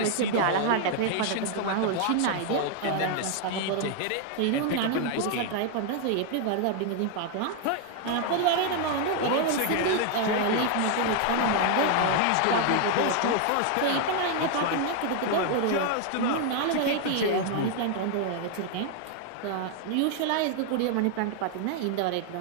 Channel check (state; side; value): different; both; correlation 0.00